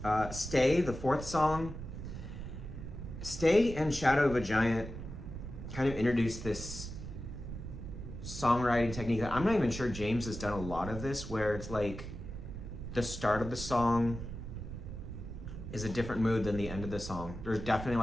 Stay, the fourth song. Stay and Shadow of a Giant kind of introduced this songwriting technique that I'm not even sure James has done a lot of this, where it's like the start of the song is a different mood than the end of the song. There's definitely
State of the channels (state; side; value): noise; right; rumble, 9 dB below the sound